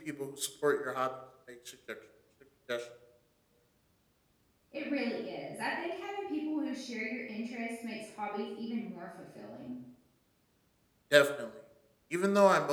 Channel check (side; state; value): both; identical; correlation 1.00